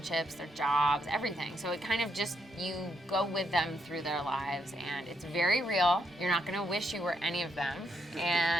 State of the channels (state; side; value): normal; both; correlation 0.78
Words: their jobs, everything. So it kind of just, you go with them through their lives and it's very real. You're not gonna wish you were any of them.